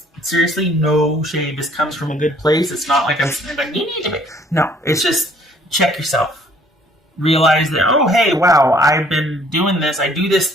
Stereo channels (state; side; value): normal; both; correlation 0.60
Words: seriously, no shade. This comes from a good place. It's not like I'm saying, like, you need to be. No, it's just check yourself. Realize that, oh, hey, wow, I've been doing this. I do this